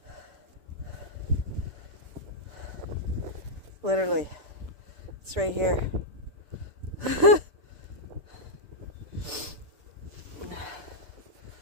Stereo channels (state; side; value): late; left; 6.8 ms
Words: Literally, it's right here.